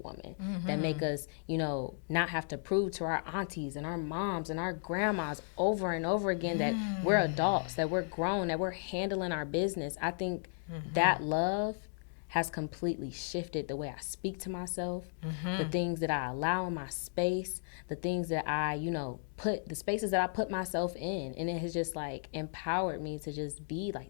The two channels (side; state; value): right; silent; digital silence